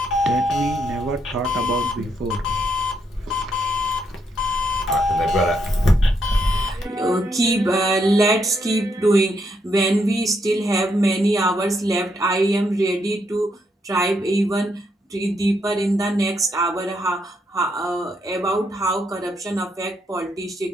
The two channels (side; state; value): both; normal; correlation 0.77